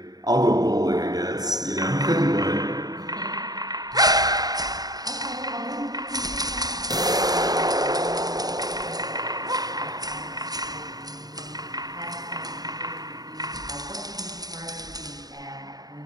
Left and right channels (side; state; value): left; late; 0.19 ms